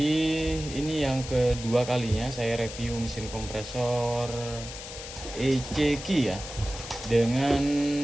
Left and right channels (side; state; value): left; noise; hiss, 11 dB below the sound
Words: ini yang kedua kalinya saya review mesin kompresor ECQ ya, dengan